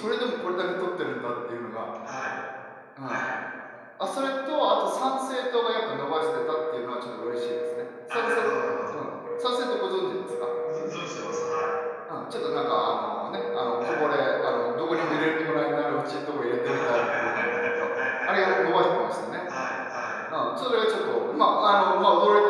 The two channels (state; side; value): identical; both; correlation 1.00